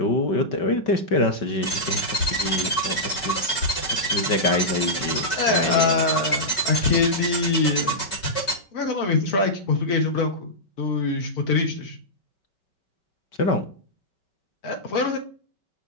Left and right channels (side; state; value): right; late; 5.2 ms